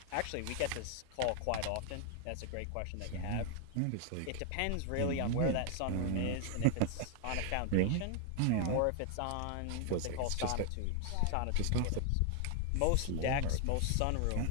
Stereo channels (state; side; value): different; both; correlation 0.00